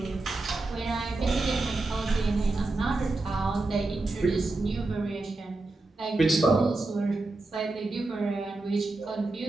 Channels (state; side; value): quieter; left; 3.2 dB